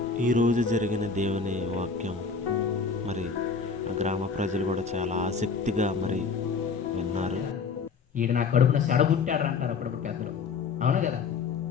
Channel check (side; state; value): right; quieter; 5.2 dB